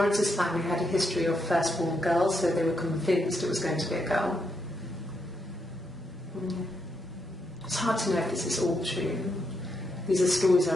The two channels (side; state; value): both; normal; correlation 0.80